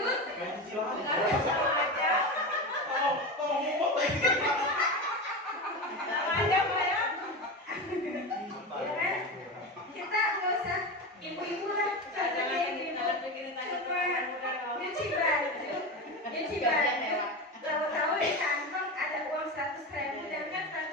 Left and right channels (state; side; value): normal; both; correlation 0.22